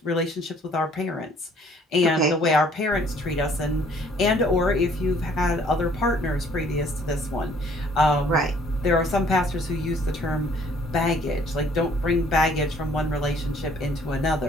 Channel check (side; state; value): both; normal; correlation 0.59